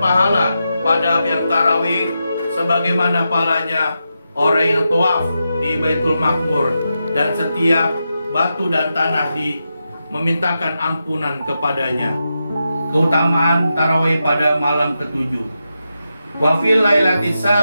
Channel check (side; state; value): both; inverted; correlation -0.88